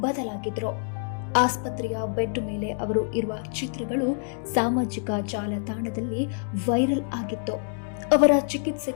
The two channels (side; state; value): right; silent; 61 dB below the other